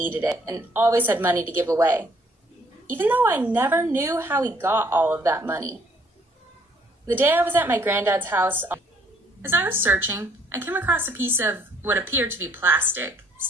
it and always had money to give away, even though I never knew how he got all of that money. The day I was at my granddad's house, as I was searching, I came across a piece of what appeared to be plastic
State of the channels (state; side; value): normal; both; correlation 0.63